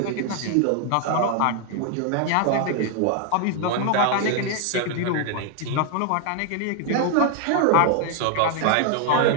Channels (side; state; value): both; different; correlation 0.00